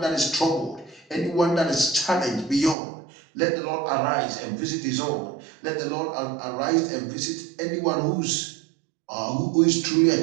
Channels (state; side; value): drops out; left; at 2.8 s